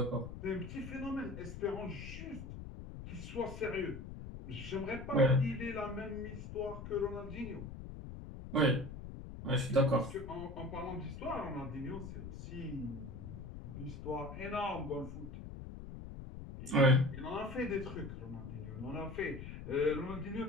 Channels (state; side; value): noise; left; rumble, 10 dB below the sound